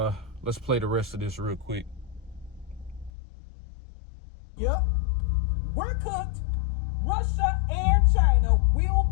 play the rest of this real quick. Yep. We're cooked. Russia and China will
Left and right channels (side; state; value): right; drops out; at 3.1 s